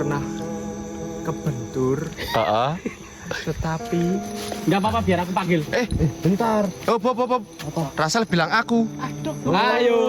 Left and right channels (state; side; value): identical; both; correlation 1.00